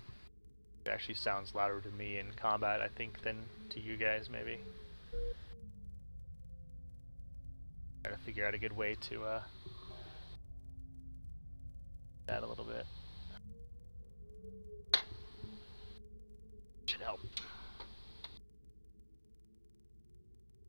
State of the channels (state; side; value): inverted; both; correlation -1.00